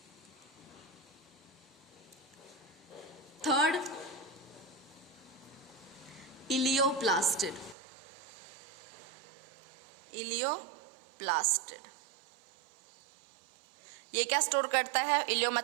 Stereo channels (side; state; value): left; drops out; at 7.8 s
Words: थर्ड इलियोप्लास्टिड, इलियोप्लास्टिड ये क्या स्टोर करता है? इलियो